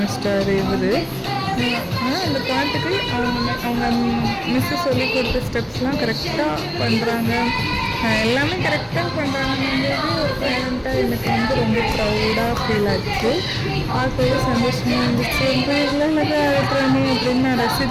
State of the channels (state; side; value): identical; both; correlation 1.00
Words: இவர். ஆனால் அந்த பாட்டுக்கு அவங்க மிஸ்ஸு சொல்லி கொடுத்த ஸ்டெப்ஸ்லாம் கரெக்டாக பண்ணுறாங்க, எல்லாமே கரெக்டாக பண்ணுறாங்கன்றது ஒரு பேரண்ட்டாக எனக்கு ரொம்ப ப்ரௌடாக ஃபீல் ஆச்சு. பார்க்கவே சந்தோஷமாக இருந்துச்சு. ரொம்ப ஆடுறானே அப்படின்னு நான்